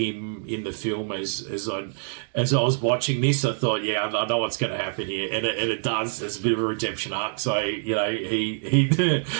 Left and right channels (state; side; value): silent; left; digital silence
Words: in the film. As I was watching this, I thought, I know what's going to happen here, and it does. There's a bit of a redemption arc. So he